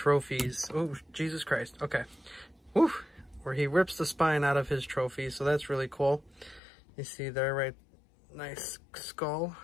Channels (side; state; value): right; drops out; at 6.6 s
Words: Oh, Jesus Christ. Okay. Woo. Where he rips the spine out of his trophies. So that's really cool. You see there, right? Nice skull.